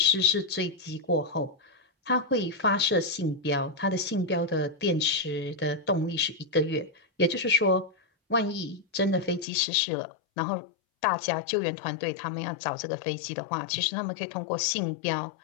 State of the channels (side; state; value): right; drops out; at 9.5 s